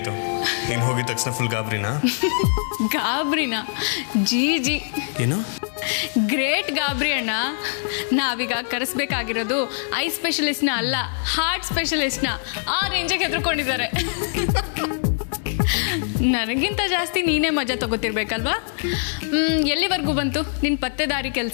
ನೀನು ಹೋಗಿದ ತಕ್ಷಣ ಫುಲ್ ಗಾಬರಿನಾ? ಗಾಬರಿನಾ? ಜಿ ಏನು? ಗ್ರೇಟ್ ಗಾಬರಿ ಅಣ್ಣ. ನಾವೀಗ ಕರೆಸ್ಬೇಕಾಗಿರೋದು ಐ ಸ್ಪೆಷಲಿಸ್ಟ್ನ ಅಲ್ಲ, ಹಾರ್ಟ್ ಸ್ಪೆಷಲಿಸ್ಟ್ನ. ಆ ರೇಂಜಿಗೆ ಹೆದರ್ಕೊಂಡಿದ್ದಾರೆ. ನನಗಿಂತ ಜಾಸ್ತಿ ನೀನೇ ಮಜಾ ತಗೋತಿರ್ಬೇಕಲ್ವಾ? ಎಲ್ಲಿವರೆಗೂ ಬಂತು ನಿನ್ನ ಪತ್ತೆದಾರಿ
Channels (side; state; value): right; silent; digital silence